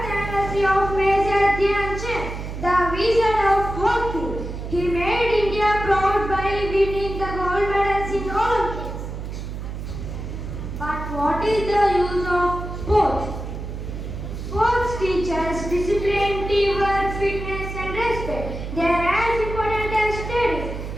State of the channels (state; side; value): noise; right; hum, 7 dB below the sound